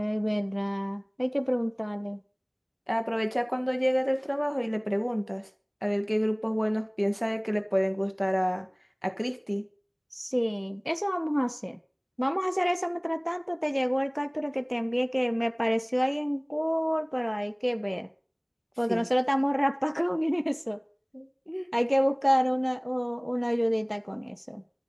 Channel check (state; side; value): identical; both; correlation 1.00